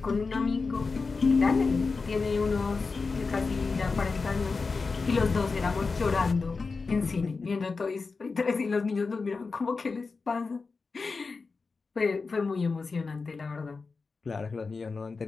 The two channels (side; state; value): right; quieter; 4.4 dB